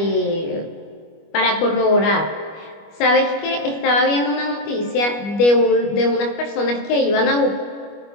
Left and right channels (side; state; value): right; late; 25 ms